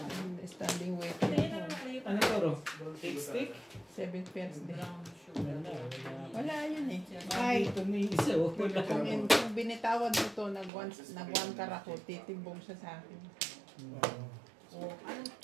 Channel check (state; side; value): drops out; left; at 10.7 s